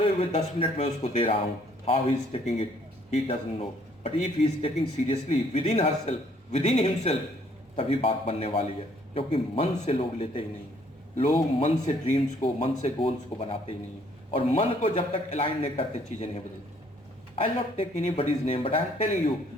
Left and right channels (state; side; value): normal; both; correlation 0.63